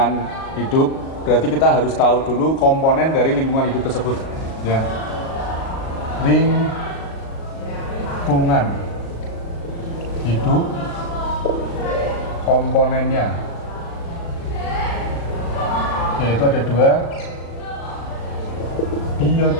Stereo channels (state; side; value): late; right; 37 ms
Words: hidup, berarti kita harus tahu dulu komponen dari lingkungan hidup tersebut. Ya, lingkungan hidup, komponennya, yaitu ada 2,